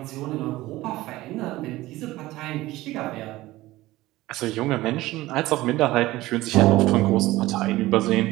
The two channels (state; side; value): quieter; left; 17.7 dB